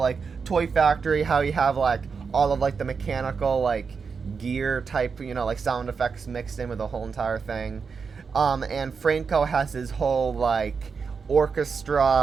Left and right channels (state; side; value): quieter; left; 5.5 dB